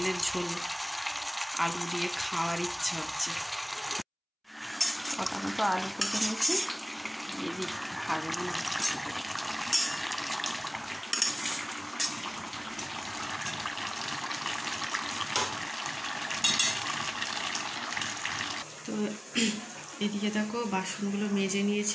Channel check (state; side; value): identical; both; correlation 1.00